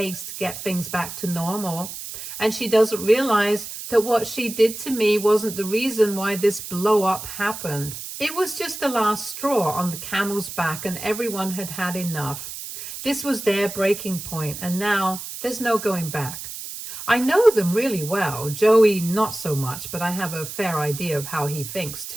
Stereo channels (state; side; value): noise; right; hiss, 9 dB below the sound